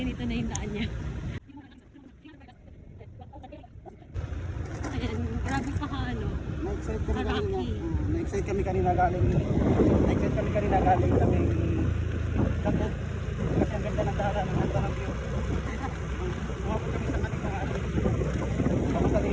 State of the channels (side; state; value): both; identical; correlation 1.00